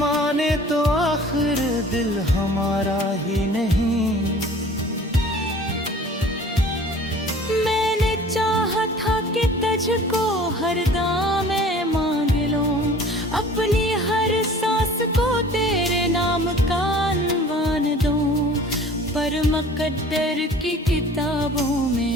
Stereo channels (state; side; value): normal; both; correlation 0.47